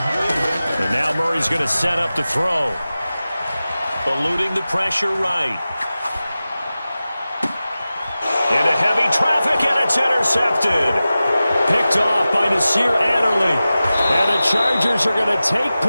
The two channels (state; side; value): inverted; both; correlation -0.95